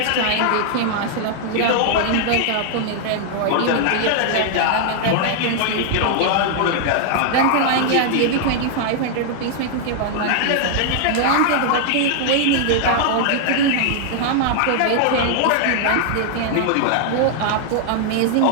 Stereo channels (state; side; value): different; both; correlation 0.00